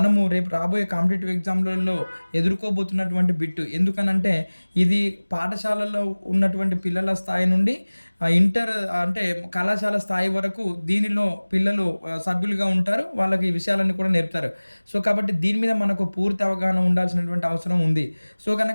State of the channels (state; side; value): inverted; both; correlation -1.00